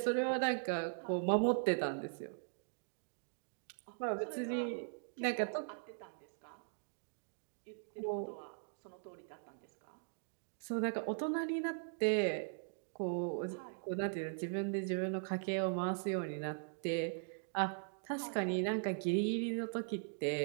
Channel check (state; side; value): silent; left; digital silence